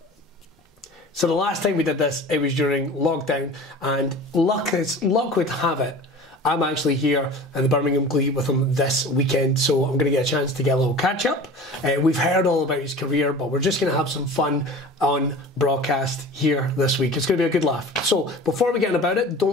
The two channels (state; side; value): normal; both; correlation 0.39